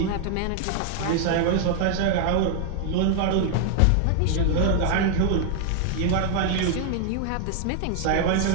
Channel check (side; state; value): both; different; correlation 0.00